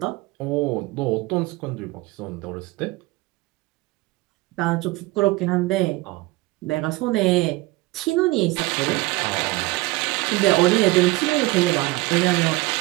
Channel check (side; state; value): left; quieter; 20.7 dB